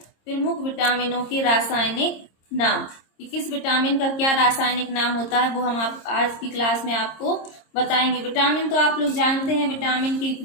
प्रमुख विटामिनों के रासायनिक नाम। कि किस विटामिन का क्या रासायनिक नाम होता है वो हम आप आज की क्लास में आपको बताएंगे। विटामिन तो आप लोग जानते हैं, विटामिन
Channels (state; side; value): late; right; 26 ms